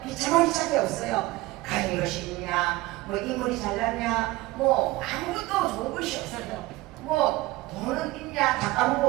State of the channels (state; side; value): quieter; left; 19.3 dB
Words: 비참하기 짝이 없어요. 가진 것이 있냐, 뭐 인물이 잘났냐, 뭐 아무것도 좋은 것이 없어요. 뭐 돈은 있냐, 다 까먹고